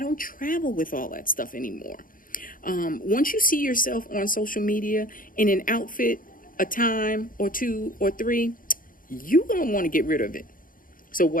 don't travel with all that stuff anymore. Once you see yourself on social media in an outfit a time or two or three, you're going to want to get rid of it. So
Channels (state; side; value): late; right; 0.40 ms